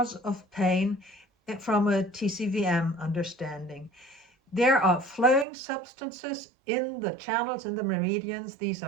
of pain from a TCVM understanding. There are flowing substances in the channels, in the meridians. These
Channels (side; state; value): left; drops out; at 5.5 s